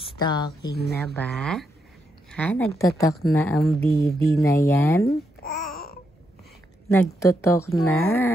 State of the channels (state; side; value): normal; both; correlation 0.81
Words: na ba? Ha? Nagtotok na ang baby na yan? Nagtotok na.